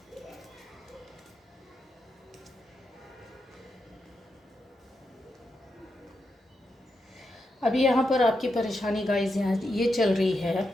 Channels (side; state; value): both; normal; correlation 0.85